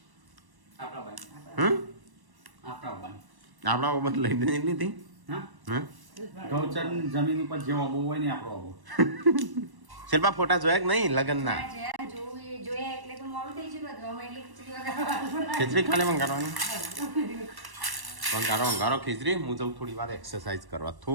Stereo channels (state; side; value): late; left; 1.1 ms